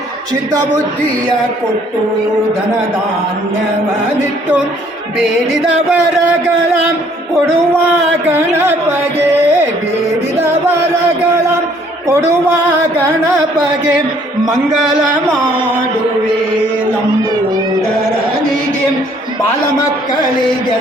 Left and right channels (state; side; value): normal; both; correlation 0.62